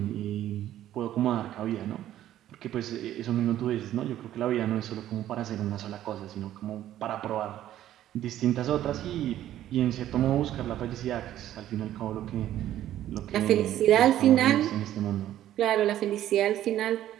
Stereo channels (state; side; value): quieter; left; 12.6 dB